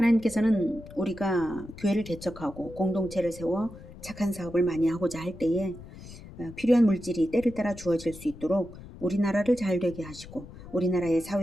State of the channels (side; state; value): left; noise; rumble, 16 dB below the sound